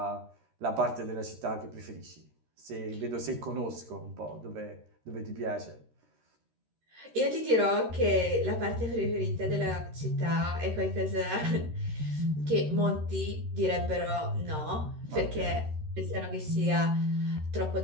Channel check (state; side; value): late; left; 13 ms